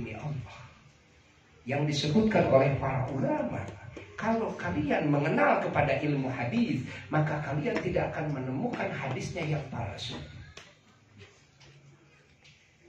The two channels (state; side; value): identical; both; correlation 1.00